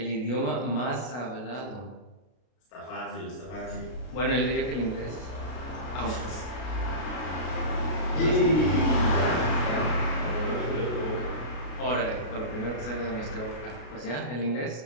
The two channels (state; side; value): late; right; 33 ms